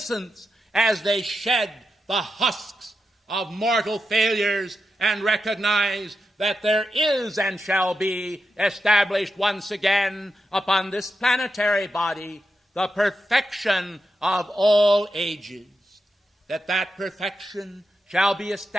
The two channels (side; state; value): both; normal; correlation 0.88